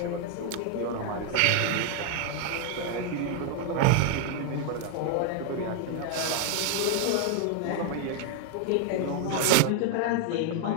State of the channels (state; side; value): different; both; correlation 0.00